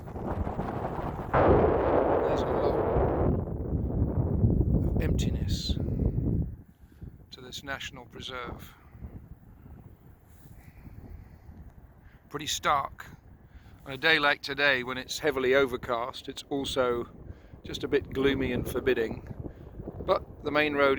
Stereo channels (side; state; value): both; identical; correlation 1.00